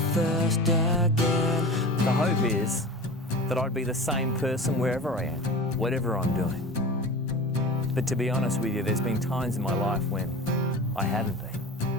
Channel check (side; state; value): both; normal; correlation 0.33